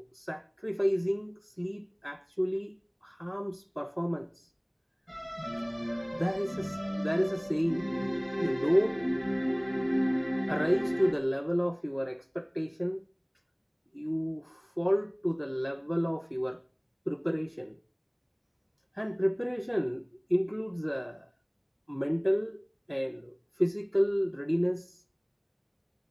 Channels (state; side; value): identical; both; correlation 1.00